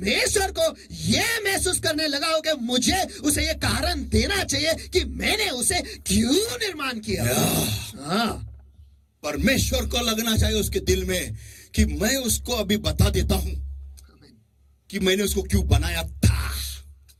को ये महसूस करने लगाऊं कि मुझे उसे ये कारण देना चाहिए कि मैंने उसे क्यों निर्माण किया? हाँ, परमेश्वर को लगना चाहिए उसके दिल में कि मैं उसको अभी बता देता हूं कि मैंने उसको क्यों बनाया था.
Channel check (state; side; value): identical; both; correlation 1.00